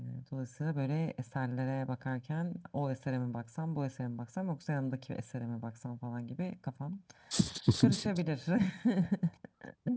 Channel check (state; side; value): identical; both; correlation 1.00